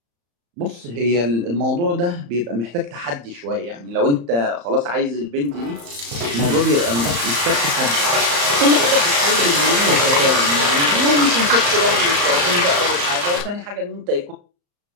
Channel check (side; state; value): left; late; 35 ms